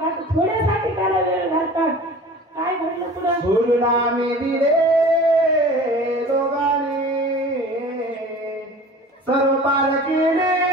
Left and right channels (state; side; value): normal; both; correlation 0.41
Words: आता थोड्यासाठी त्याला वेळ घालतात. काय घडलं पुढं. सोडून आम्ही दिले दोघांनी, सर्व पार